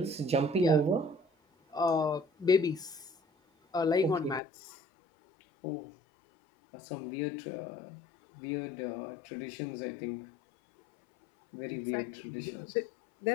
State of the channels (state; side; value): drops out; right; at 4.4 s